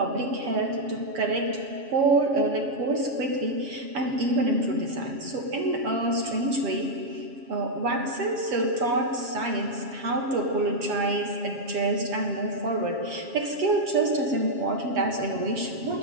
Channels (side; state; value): left; late; 7.3 ms